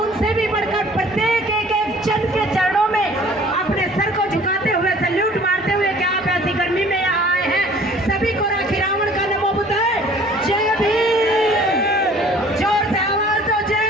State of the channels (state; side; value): normal; both; correlation 0.51